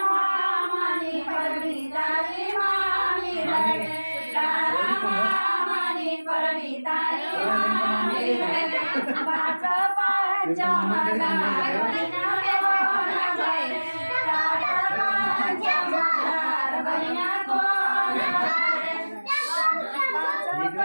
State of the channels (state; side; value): inverted; both; correlation -1.00